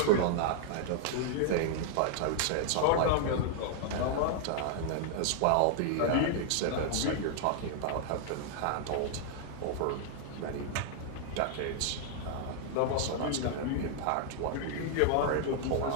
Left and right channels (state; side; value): different; both; correlation 0.00